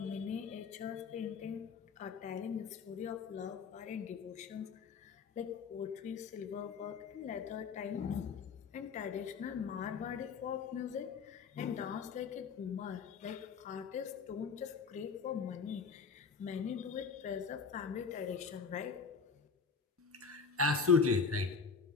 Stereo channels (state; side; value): quieter; right; 5.5 dB